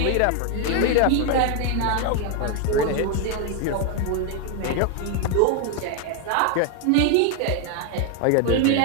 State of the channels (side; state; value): both; different; correlation 0.00